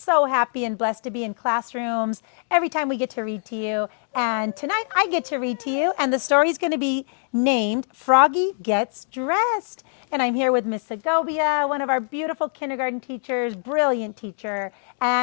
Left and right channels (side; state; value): right; silent; 63 dB below the other